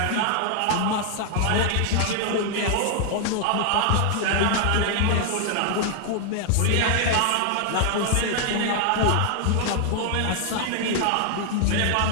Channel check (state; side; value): different; both; correlation 0.00